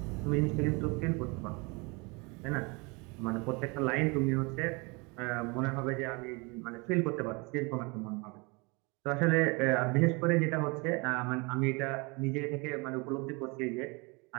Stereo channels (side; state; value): left; quieter; 28.6 dB